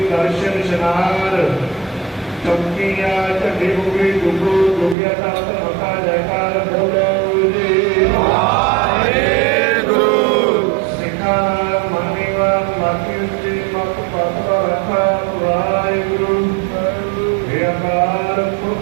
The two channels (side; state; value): left; drops out; at 5.0 s